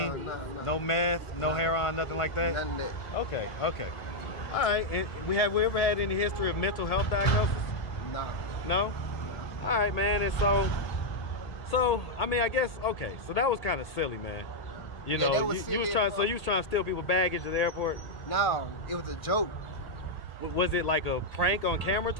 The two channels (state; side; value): late; right; 1.8 ms